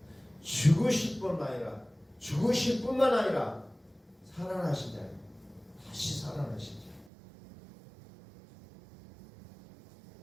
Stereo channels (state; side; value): drops out; left; at 7.1 s